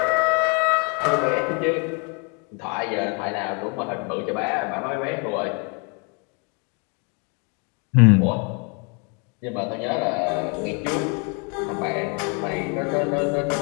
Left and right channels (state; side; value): quieter; right; 35.1 dB